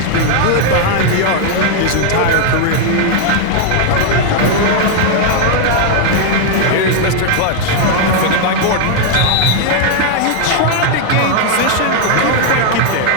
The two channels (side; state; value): both; different; correlation 0.00